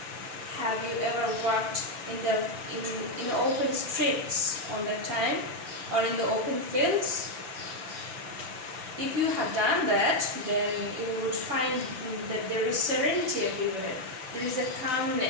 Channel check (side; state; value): left; late; 5.9 ms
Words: Have you ever walked in open streets on that time or in the open fields? If you have done that, then you would find that there is serenity everywhere. There is a